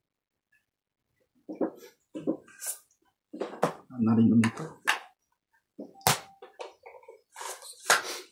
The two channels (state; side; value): identical; both; correlation 1.00